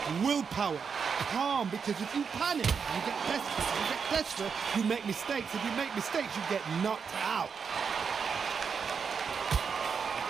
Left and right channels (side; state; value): left; quieter; 6.1 dB